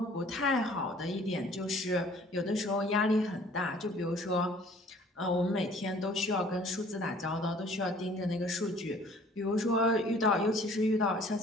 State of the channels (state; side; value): normal; both; correlation 0.54